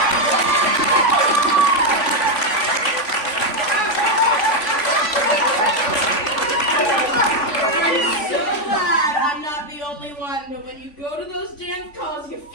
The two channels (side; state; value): right; late; 3.5 ms